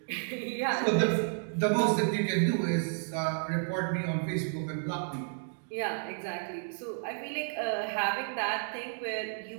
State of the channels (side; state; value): left; silent; 57 dB below the other